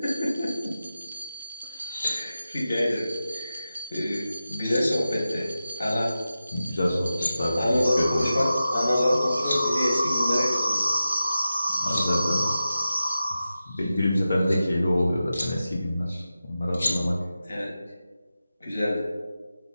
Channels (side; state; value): both; inverted; correlation -0.93